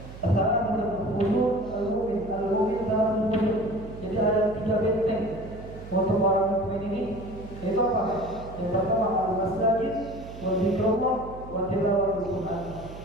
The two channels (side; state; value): right; noise; hum, 14 dB below the sound